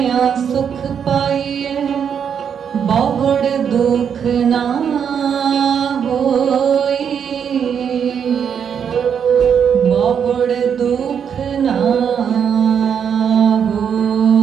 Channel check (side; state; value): left; quieter; 7.7 dB